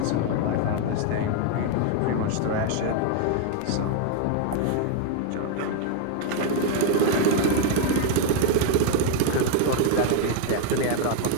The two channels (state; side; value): different; both; correlation 0.01